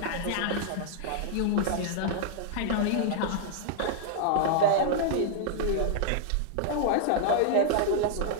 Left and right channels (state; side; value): different; both; correlation -0.01